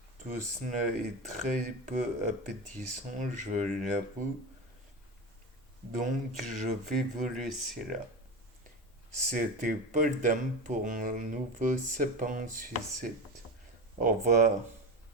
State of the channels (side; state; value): both; normal; correlation 0.23